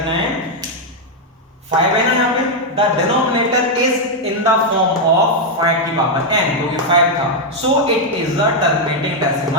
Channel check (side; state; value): both; normal; correlation 0.00